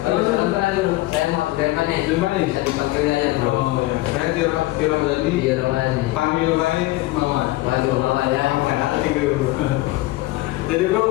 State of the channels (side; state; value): right; quieter; 18.5 dB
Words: Halo teman-teman bro. Saya mau Abdurrahman nih. Abdurrahman nih? Bisa dipanggil aja bro. Oh ya, saya Tira Medali. Iya teman nih. Panggil lain Mama. Waduh, mama ya. Hati bro. Jadi bro,